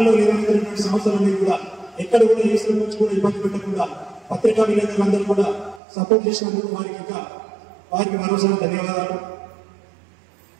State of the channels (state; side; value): drops out; left; at 5.8 s